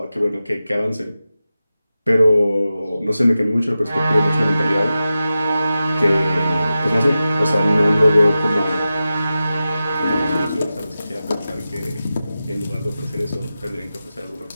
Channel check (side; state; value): both; inverted; correlation -0.93